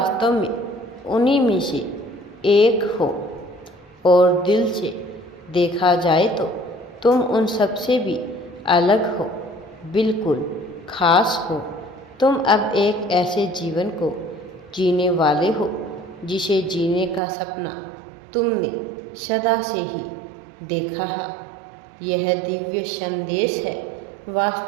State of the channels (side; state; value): left; drops out; at 17.2 s